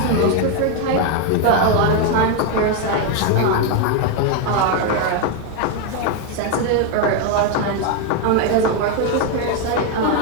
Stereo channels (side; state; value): both; different; correlation 0.01